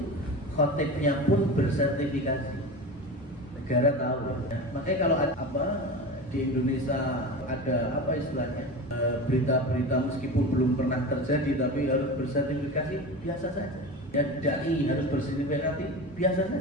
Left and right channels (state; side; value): normal; both; correlation 0.28